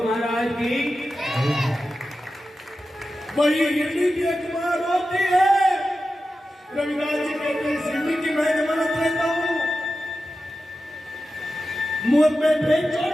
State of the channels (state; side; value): normal; both; correlation 0.92